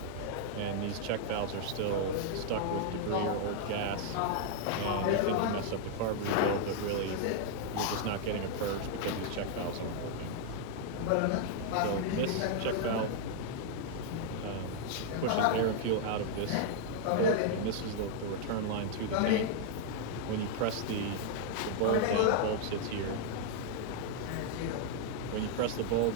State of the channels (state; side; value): different; both; correlation 0.00